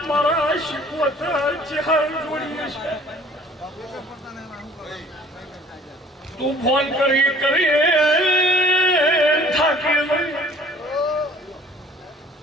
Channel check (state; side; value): normal; both; correlation 0.52